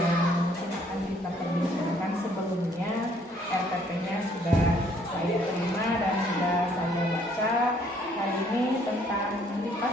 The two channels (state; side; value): normal; both; correlation 0.64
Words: mungkin akan kita perbincangan. Sebelumnya RPP-nya sudah saya terima dan sudah saya baca. Hari ini tentang